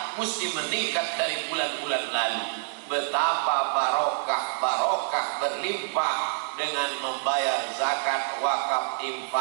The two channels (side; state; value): left; silent; digital silence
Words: mesti meningkat dari bulan-bulan lalu. Betapa barokah berlimpah dengan membayar zakat, wakaf,